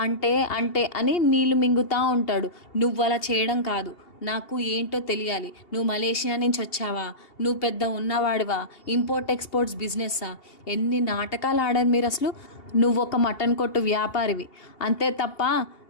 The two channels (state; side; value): late; right; 2.8 ms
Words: అంటే అంటే అని నీళ్లు మింగుతూ ఉంటాడు. నువ్వు అలా చేయడం కాదు, నాకు ఏంటో తెలియాలి. నువ్వు మలేషియా నుంచి వచ్చావా? నువ్వు పెద్ద ఉన్నవాడివా? Import exports బిజినెస్సా? ఎన్ని నాటకాలు ఆడారు మీరు అసలు. నువ్వు ఒక మటన్ కొట్టు వ్యాపారివి అంతే తప్ప